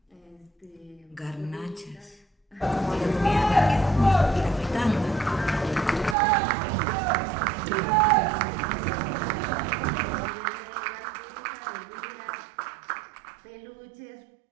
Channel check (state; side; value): drops out; left; at 6.2 s